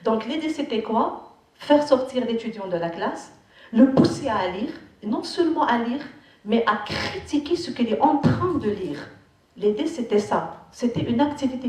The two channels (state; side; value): identical; both; correlation 1.00